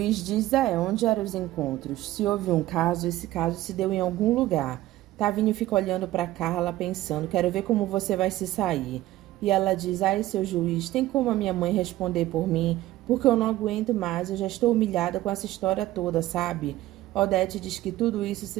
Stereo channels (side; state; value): left; quieter; 15.7 dB